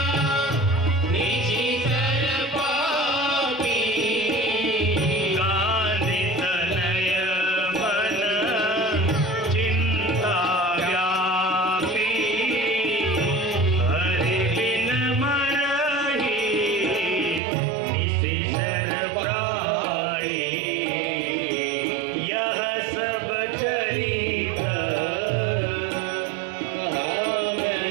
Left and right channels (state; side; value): drops out; left; at 17.4 s